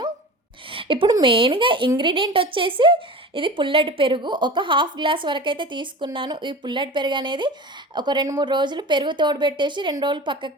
ఇప్పుడు మెయిన్గా ఇంగ్రీడియంట్ వచ్చేసి ఇది పుల్లటి పెరుగు. ఒక 1/2 గ్లాస్ వరకు అయితే తీసుకున్నాను. ఈ పుల్లటి పెరుగు అనేది ఒక 2-3 రోజులు పెరుగు తోడుపెట్టేసి 2 రోజులు పక్కకు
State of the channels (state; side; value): normal; both; correlation 0.34